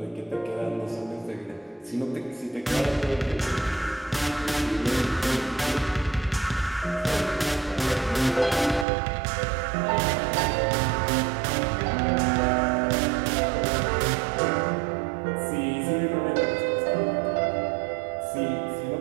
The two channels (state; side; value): drops out; left; at 8.8 s